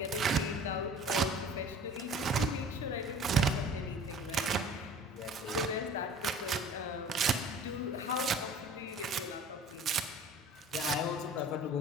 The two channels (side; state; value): both; normal; correlation 0.45